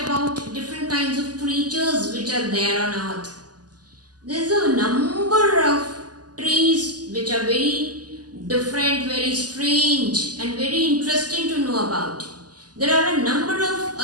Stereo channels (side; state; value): left; late; 0.68 ms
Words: about different kinds of creatures which are there on earth. There's a number of trees which are very different, very strange and very interesting to know about. There are a number of